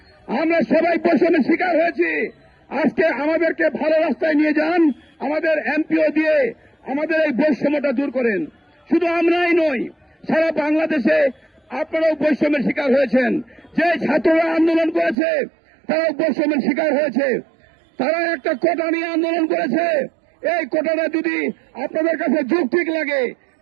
আমরা সবাই বৈষম্যের শিকার হয়েছি। আজকে আমাদেরকে ভালো রাস্তায় নিয়ে যান, আমাদের এমপিও দিয়ে আমাদের এই বৈষম্যটা দূর করেন। শুধু আমরাই নই, সারা বাংলাদেশে আপনারাও বৈষম্যের শিকার হয়েছেন। যে ছাত্ররা আন্দোলন করেছে তারাও বৈষম্যের শিকার হয়েছে। তারা একটা কোটা নিয়ে আন্দোলন করেছে, এই কোটাটা যদি আপনাদের কাছে যৌক্তিক লাগে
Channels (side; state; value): left; drops out; at 15.2 s